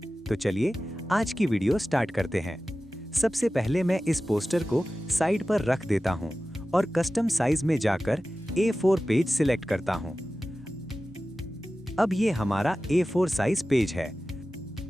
तो चलिए आज की वीडियो स्टार्ट करते हैं। सबसे पहले मैं इस पोस्टर को साइड पर रख देता हूं और कस्टम साइज में जाकर A4 पेज सिलेक्ट करता हूं। अब ये हमारा A4 साइज पेज है।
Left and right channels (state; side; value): normal; both; correlation 0.95